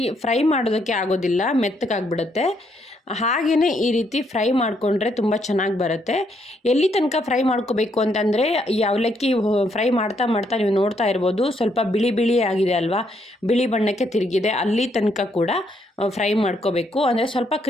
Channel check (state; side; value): normal; both; correlation 0.74